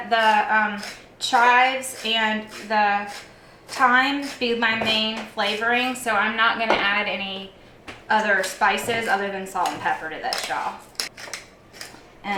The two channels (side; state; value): both; identical; correlation 1.00